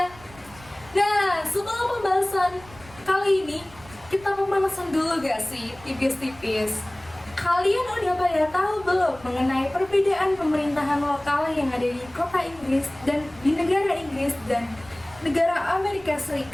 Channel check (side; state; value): right; noise; rumble, 22 dB below the sound